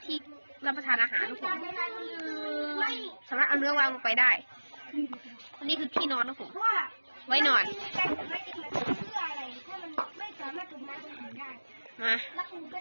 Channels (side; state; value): both; inverted; correlation -1.00